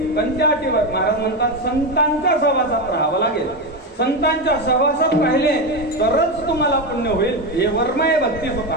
कोणत्या अटीवर? महाराज म्हणतात संतांच्या सहवासात राहावं लागेल. संतांच्या सहवासात राहिले तरच तुम्हाला पुण्य होईल. हे वर्म आहे भक्ती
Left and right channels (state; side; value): normal; both; correlation 0.13